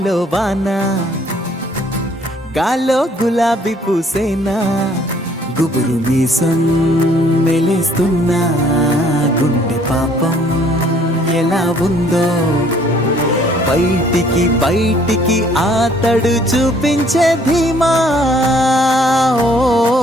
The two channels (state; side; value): normal; both; correlation 0.61